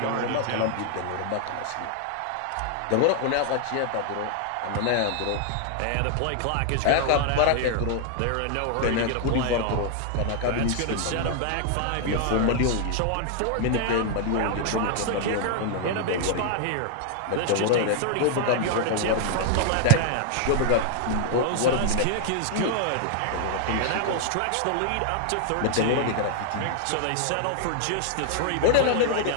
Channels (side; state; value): both; different; correlation 0.00